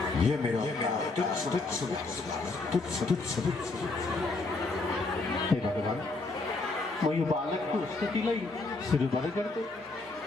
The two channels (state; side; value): quieter; right; 3.5 dB